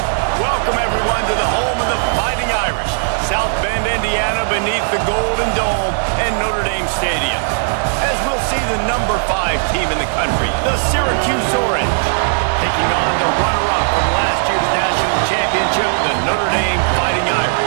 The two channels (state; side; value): silent; left; digital silence